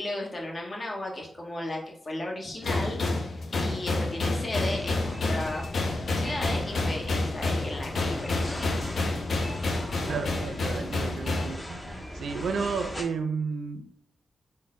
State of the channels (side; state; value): both; normal; correlation 0.87